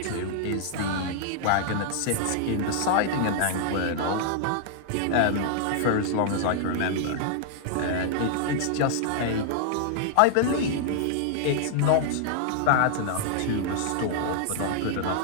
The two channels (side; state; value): both; different; correlation -0.01